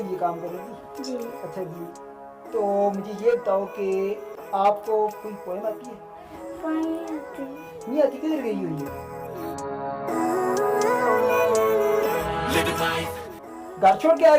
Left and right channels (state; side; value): identical; both; correlation 1.00